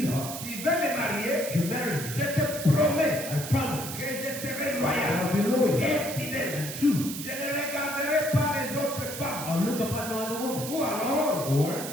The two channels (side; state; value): right; noise; hiss, 8 dB below the sound